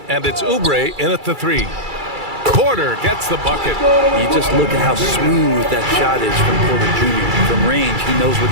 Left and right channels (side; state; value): left; late; 2.3 ms